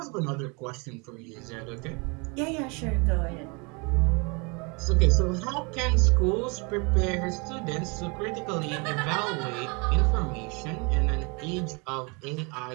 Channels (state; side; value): quieter; left; 31.1 dB